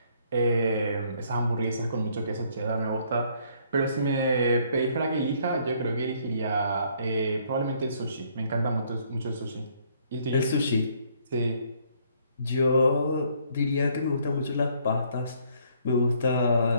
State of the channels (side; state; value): both; inverted; correlation -0.65